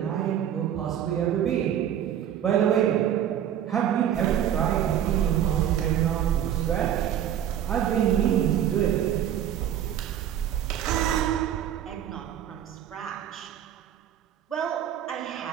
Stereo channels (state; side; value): quieter; left; 10.2 dB